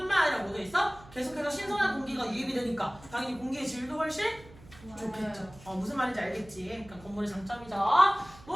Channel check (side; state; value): right; noise; hum, 21 dB below the sound